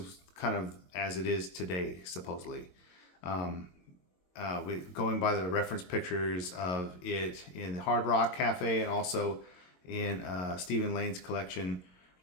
kind of as it is today, supposedly. Going by the reference pictures of it in the Hard Rock Cafe and also in Stephen Lane's collection,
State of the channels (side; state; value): right; late; 22 ms